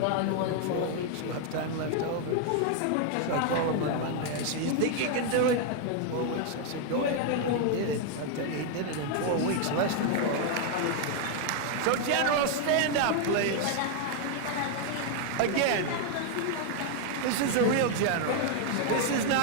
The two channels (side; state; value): both; different; correlation 0.00